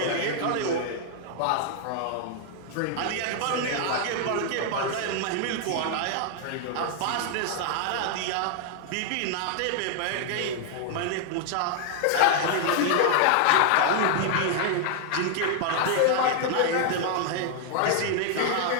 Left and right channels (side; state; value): both; different; correlation 0.00